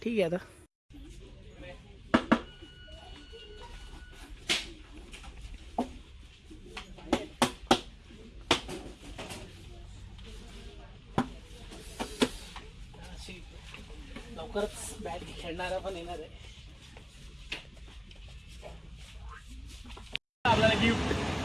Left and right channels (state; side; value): identical; both; correlation 1.00